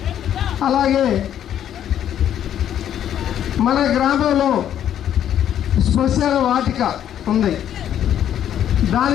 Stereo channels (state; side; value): quieter; right; 10.3 dB